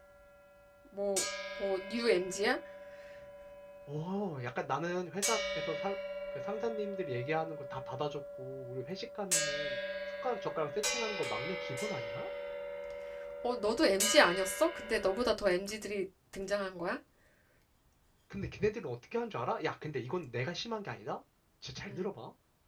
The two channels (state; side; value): identical; both; correlation 1.00